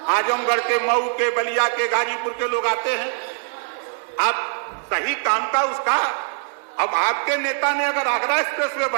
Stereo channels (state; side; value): silent; left; digital silence